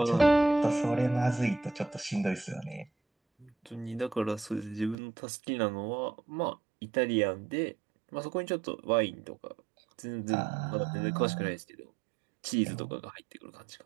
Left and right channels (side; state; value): left; drops out; at 5.0 s